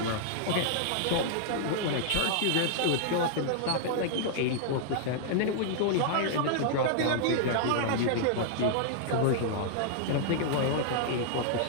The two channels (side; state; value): both; different; correlation -0.01